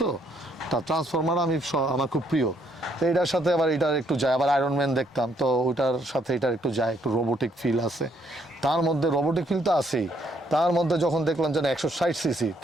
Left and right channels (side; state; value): both; normal; correlation 0.70